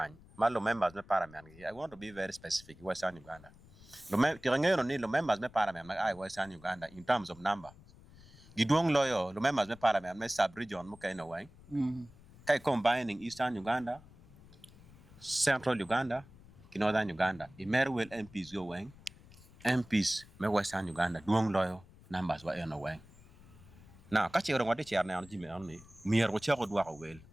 malo members me parliament I want to be very specific Western Uganda lo members me parliament I Western Uganda in terms of number gidwong loyo lo members me parliament me sub region mo kay na way kay combining Eastern Uganda Central Uganda Northern Uganda Imerwell MPs go wang MPs me Western Uganda duong loyo numbers wa eno wang now ka chero ngode cher na jime on ni mier ko chego dwa ko wel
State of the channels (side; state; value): left; noise; rumble, 22 dB below the sound